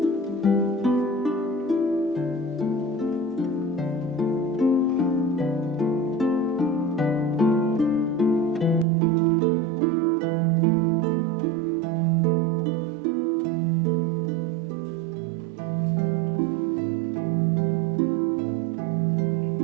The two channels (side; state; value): left; drops out; at 8.8 s